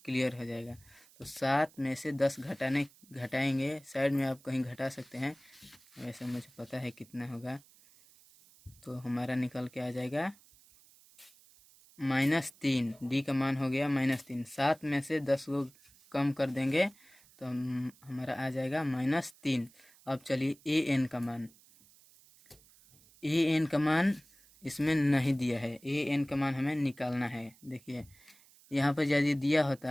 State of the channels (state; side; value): noise; right; hiss, 27 dB below the sound